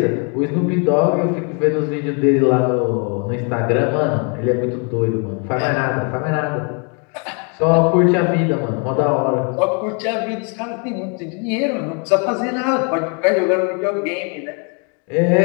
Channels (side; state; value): right; quieter; 36.9 dB